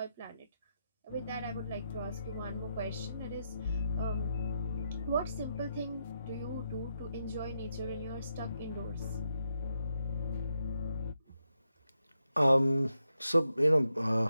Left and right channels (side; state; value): both; inverted; correlation -0.83